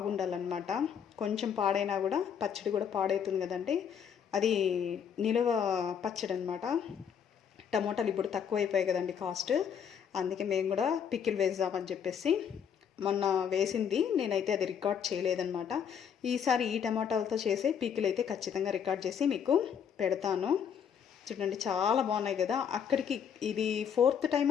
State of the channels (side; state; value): right; quieter; 7.8 dB